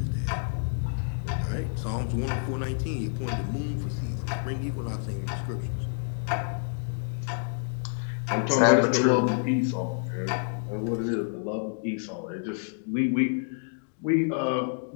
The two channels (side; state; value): right; silent; digital silence